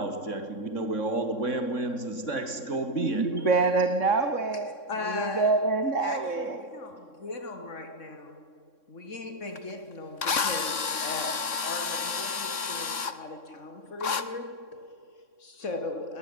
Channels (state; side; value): late; right; 3.6 ms